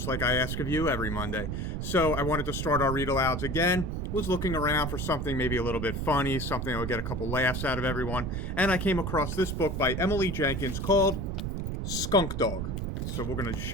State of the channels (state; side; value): noise; right; rumble, 3 dB below the sound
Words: like I ask of you every Monday. So I wanted to start our read alouds again. Was looking around for something maybe a little bit funny, something that would get a couple laughs out of everyone. And I came across this book by Emily Jenkins called Skunkdog. So we're going to